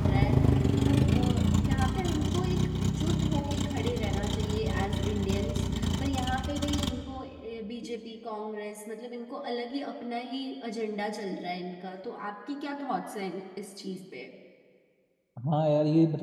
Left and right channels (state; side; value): identical; both; correlation 1.00